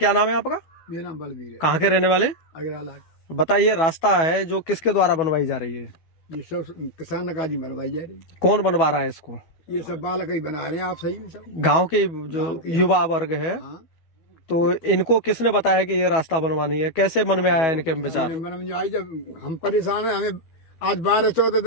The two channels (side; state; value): right; late; 12 ms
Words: नाम है आपका? मेरा नाम बलबीर है। कहाँ के रहने वाले? अगरियाला। बताइए, रास्ता है जो किसके द्वारा बनवाई जा रही है? ये सब किसान काजी बनवाई जा रही है। कौन बनवा रहा है इसको? ये सब बालक ही बना रहे हैं। आप सही में सब गांव के जो युवा वर्ग है। हाँ। तो इनको किसने बताया कि ये रास्ता बनवानी है? कैसे मन में आया इनके विचार? मन में आई, जब हम परेशान है, हमें आज 12-14